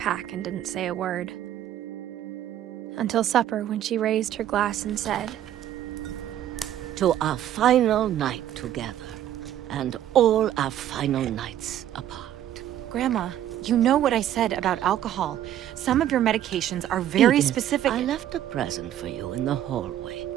and didn't say a word. Until supper, when she raised her glass and said, "To our final night together, and all our final nights apart." Grandma, you know what I said about alcohol. Some of your medications are very Edith, specific. I left a present for you in the hallway.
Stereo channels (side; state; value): left; quieter; 11.6 dB